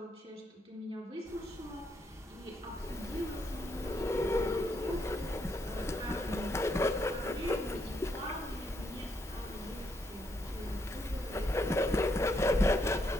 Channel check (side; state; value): both; normal; correlation 0.76